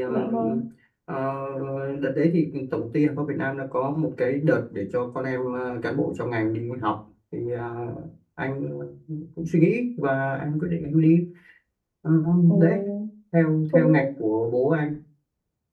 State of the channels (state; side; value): identical; both; correlation 1.00